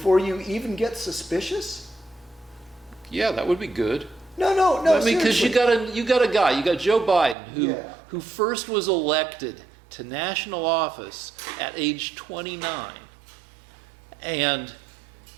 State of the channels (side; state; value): left; drops out; at 7.4 s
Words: you even get suspicious? Yeah, that would be good. No, I mean, because you seriously. got a guy, you got Joe Biden, Yeah. who first was elected to national office at age 29, and